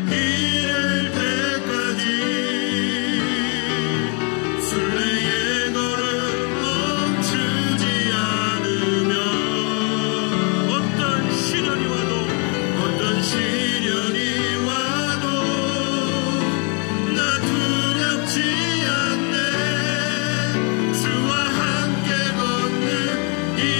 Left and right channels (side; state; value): right; quieter; 35.7 dB